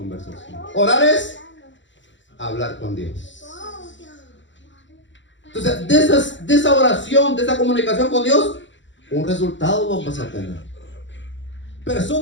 Orar es hablar con Dios. Entonces, de esa oración, de esa comunicación con Dios, un resultado vamos a tener.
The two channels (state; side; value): late; right; 0.54 ms